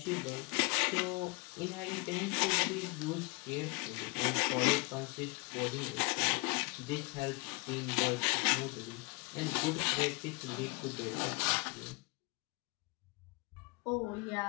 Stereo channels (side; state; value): right; quieter; 28.0 dB